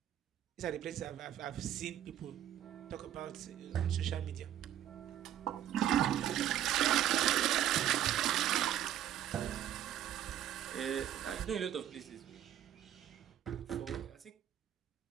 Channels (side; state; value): left; quieter; 11.1 dB